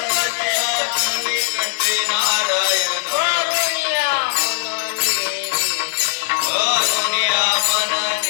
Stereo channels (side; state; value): right; silent; 61 dB below the other